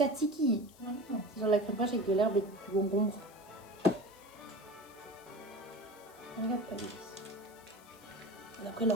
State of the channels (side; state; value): left; noise; hiss, 24 dB below the sound